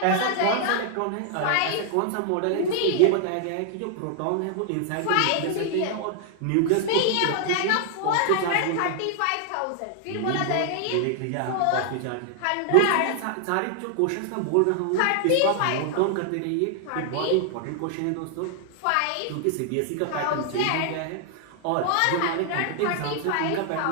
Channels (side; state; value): both; different; correlation -0.01